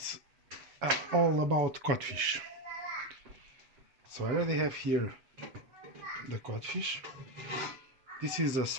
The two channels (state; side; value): late; left; 7.3 ms